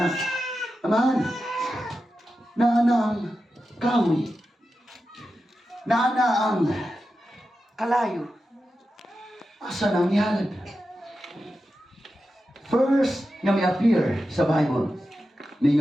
Aman, naana ang kawi, naana ang kalayo. Asa nang ihalad? First nga may appear sa Bible,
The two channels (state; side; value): normal; both; correlation 0.91